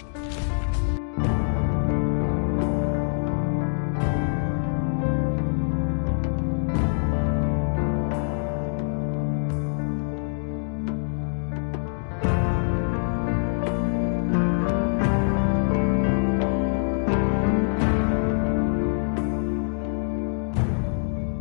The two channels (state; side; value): silent; right; digital silence